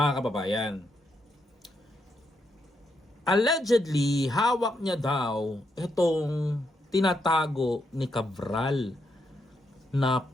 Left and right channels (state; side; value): normal; both; correlation 0.80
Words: kababayan. Allegedly, hawak niya daw itong tinatago ni Cabral na